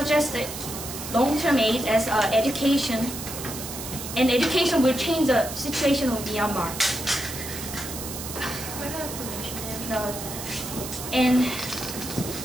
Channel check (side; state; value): right; noise; hiss, 8 dB below the sound